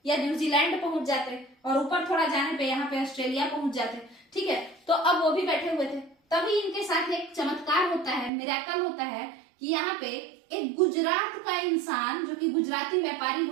या न्यूजीलैंड पहुंच जाते, और ऊपर थोड़ा जाने पे यहाँ पे ऑस्ट्रेलिया पहुंच जाते, ठीक है। तो अब वो भी बैठे हुए थे। तभी इनके साथ एक चमत्कार होता है, मिरेकल होता है कि यहाँ पे एक गुजरात का इंसान जो कि गुजराती व्यापारी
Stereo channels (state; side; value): drops out; left; at 8.3 s